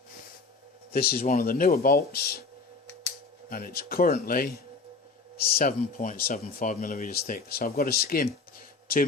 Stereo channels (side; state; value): right; quieter; 4.2 dB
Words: This is one of the newer bolts, and it's currently 7.75 millimeters thick. So I've got to skim 2